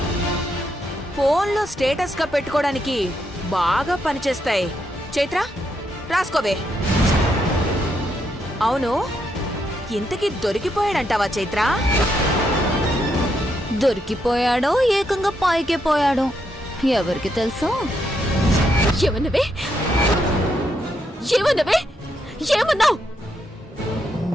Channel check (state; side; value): normal; both; correlation 0.79